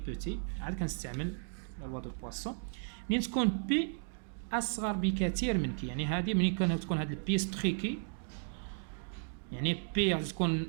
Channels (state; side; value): silent; left; digital silence